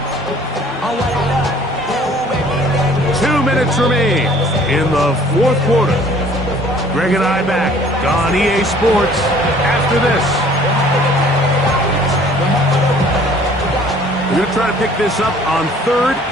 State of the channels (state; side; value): normal; both; correlation 0.54